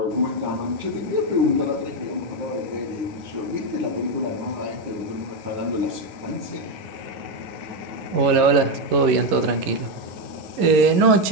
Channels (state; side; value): late; left; 11 ms